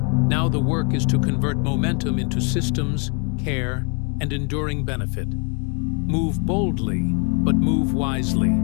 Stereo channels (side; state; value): right; quieter; 34.9 dB